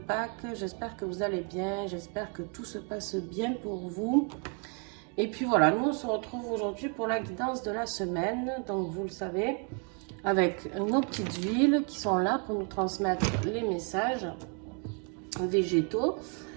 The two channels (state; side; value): quieter; left; 38.6 dB